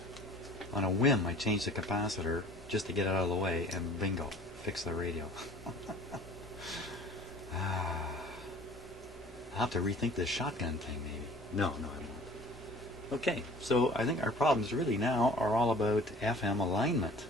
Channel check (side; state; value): both; normal; correlation 0.48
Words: On a whim, I changed the capacitor just to get it out of the way, and bingo, fix the radio. I'll have to rethink this shotgun thing, maybe. No, I won't. Okay, so I think our problems really now are all about FM alignment,